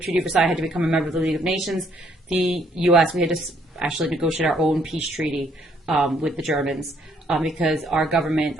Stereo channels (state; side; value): normal; both; correlation 0.67